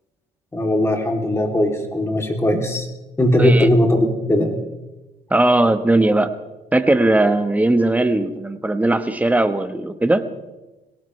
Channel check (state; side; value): normal; both; correlation 0.86